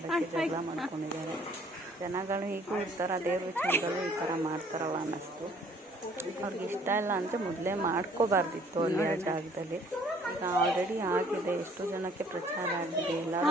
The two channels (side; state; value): both; normal; correlation 0.58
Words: ಜಗಳ ಮಾಡ್ಕೊಂಡಿದ್ದಾರೆ. ಜನಗಳು ಹೀಗೂ ಇರ್ತಾರ, ದೇವ್ರ ವಿಚಾರಗಳು ಈ ಥರ ಮಾಡ್ತಾರಲ್ಲ ಅನ್ನಿಸ್ತು. ಅವ್ರಿಗೆ ಇಷ್ಟ ಇಲ್ಲ ಅಂದರೆ ಮೊದಲೇ ಮಾಡ್ಕೋಬಾರ್ದಿತ್ತು ಅಲ್ಲಿ ಆ ಜಾಗದಲ್ಲಿ. ಈಗ ಆಲ್ರೆಡಿ ಆಗಿದೆ, ಎಷ್ಟು ಜನಕ್ಕೆ ಪ್ರಚಾರ ಆಗಿದೆ.